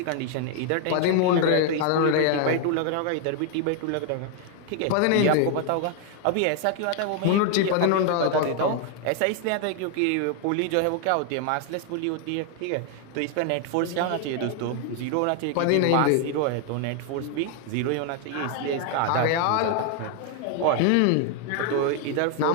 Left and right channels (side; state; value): both; different; correlation 0.00